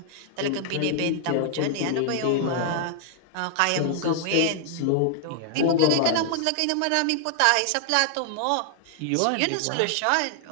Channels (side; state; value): both; different; correlation -0.01